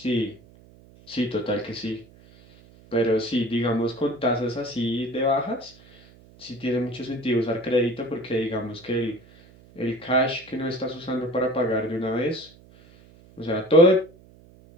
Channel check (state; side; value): noise; right; hum, 25 dB below the sound